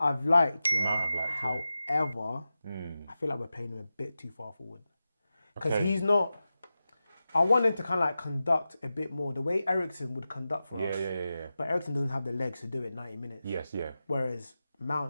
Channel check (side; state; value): both; inverted; correlation -0.93